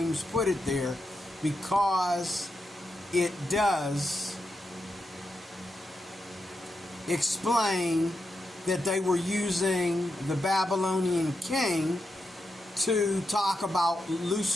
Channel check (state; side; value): normal; both; correlation 0.86